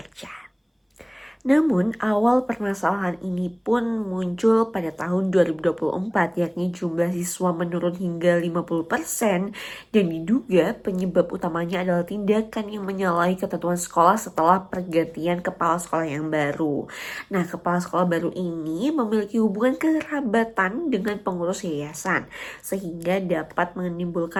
Namun, awal permasalahan ini pun muncul pada tahun 2024, yakni jumlah siswa menurun hingga 50% dan diduga penyebab utamanya adalah tindakan yang menyalahi ketentuan sekolah setelah pergantian kepala sekolah yang baru. Nah, kepala sekolah baru ini memiliki hubungan kekerabatan dengan pengurus yayasan, sehingga dapat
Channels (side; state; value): both; identical; correlation 1.00